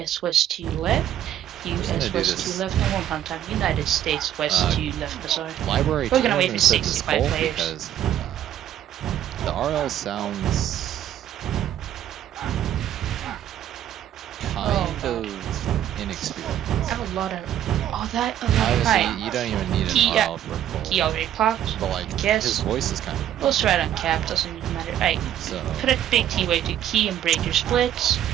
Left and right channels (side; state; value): left; quieter; 11.1 dB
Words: West 2 left. US West 2 left. And one more time. United States West 2 left. Sorry. Library. We're going to wait for 65 players. Because, the RL sounds kind of inexperience. I have a lot of. Oh, that. Obviously, Right. you don't even need Key, an RL for a Key full. already popped. But like, Yes. his voice is kind of. We'll try it on cap, doesn't even matter. Right. So, Put a big T-way to key and break your splits.